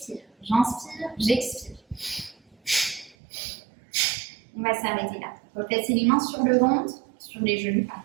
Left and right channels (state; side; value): drops out; left; at 3.2 s